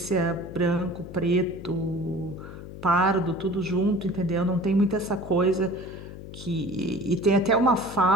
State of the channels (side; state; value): left; noise; hum, 13 dB below the sound